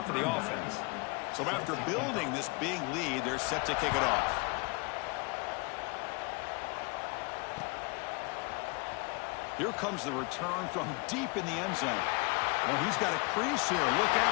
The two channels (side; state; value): right; quieter; 28.8 dB